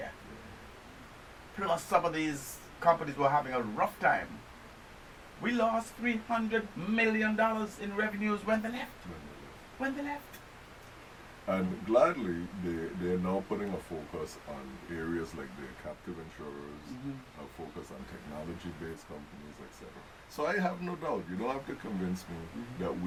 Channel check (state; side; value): identical; both; correlation 1.00